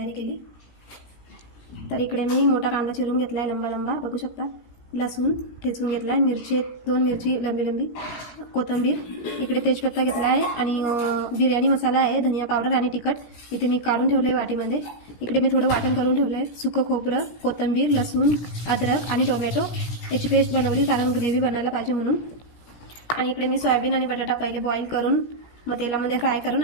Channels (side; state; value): right; late; 17 ms